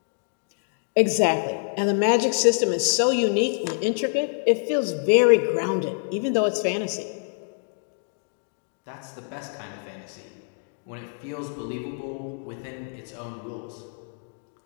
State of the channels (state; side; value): silent; right; 61 dB below the other